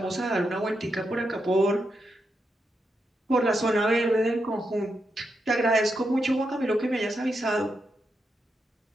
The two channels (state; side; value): normal; both; correlation 0.84